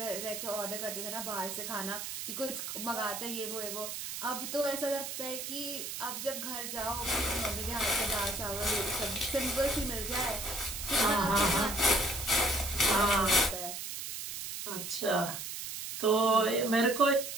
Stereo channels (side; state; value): right; noise; hiss, 6 dB below the sound